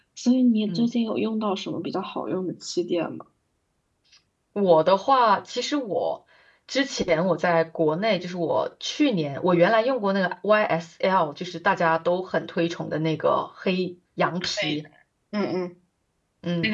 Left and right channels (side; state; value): both; identical; correlation 1.00